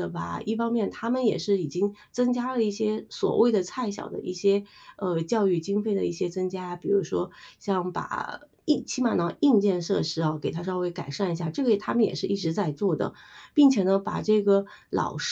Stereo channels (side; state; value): both; identical; correlation 1.00